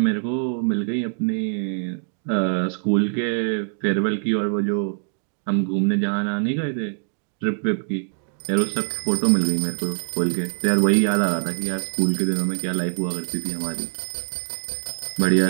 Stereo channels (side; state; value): left; silent; digital silence